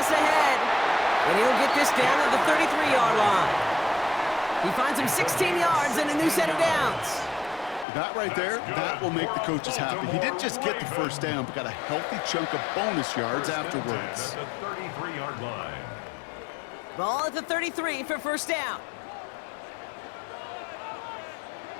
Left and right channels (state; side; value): drops out; right; at 7.9 s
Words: ahead. And he'll get this down to the 33-yard line. He finds him 16 yards and a new set of downs. That right there, that will make the coaches happy. He didn't just get the first down, but got a healthy chunk of bonus yards afterwards. At the 33-yard line. Ball at the 33 for first down.